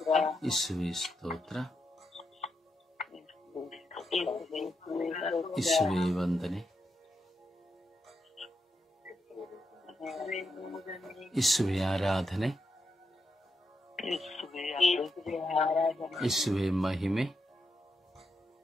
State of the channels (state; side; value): normal; both; correlation 0.84